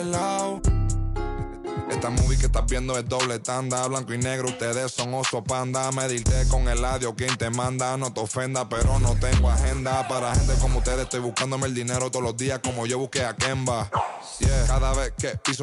lado. Esta movie que estás viendo es doble tanda, blanco y negro, ustedes son oso panda. Medirte con el audio, quien te manda, no te ofenda, pero no tengo agenda. Para gente como ustedes estoy buscándome el dinero todos los días como yo busqué a Kemba. Yeah. Cada vez que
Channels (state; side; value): identical; both; correlation 1.00